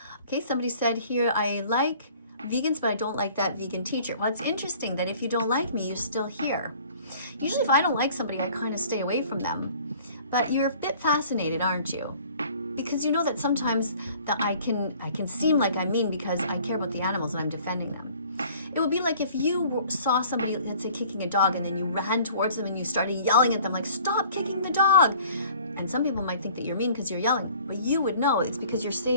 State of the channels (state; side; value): inverted; both; correlation -0.51